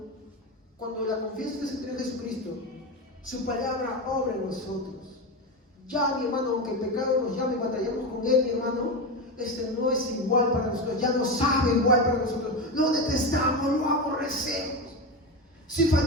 cuando la confianza se centra en Jesucristo, su palabra obra en nosotros. Ya, mi hermano, aunque el pecado nos llame y batallamos con él, mi hermano, este no es igual para nosotros, ya no sabe igual para nosotros. Lo detestamos, lo aborrecemos. Si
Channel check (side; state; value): both; normal; correlation 0.18